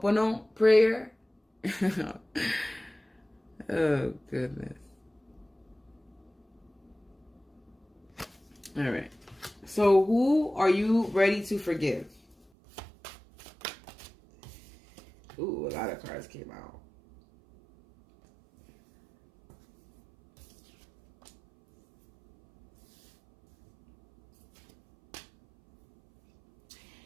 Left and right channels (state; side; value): drops out; left; at 12.4 s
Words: prayer. Oh, goodness. All right. So who are you ready to forgive? Ooh, a lot of cards came out.